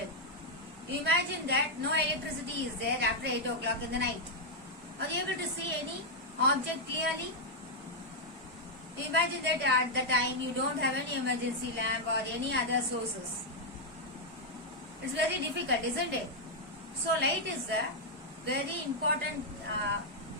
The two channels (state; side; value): normal; both; correlation -0.03